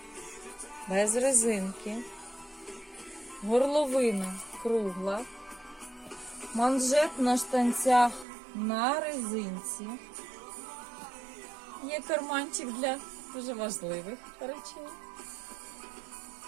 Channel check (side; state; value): left; drops out; at 8.2 s